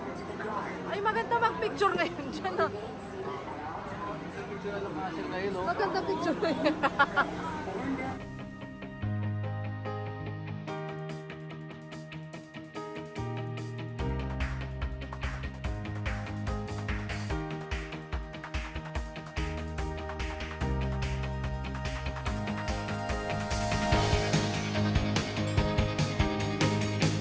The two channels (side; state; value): both; identical; correlation 1.00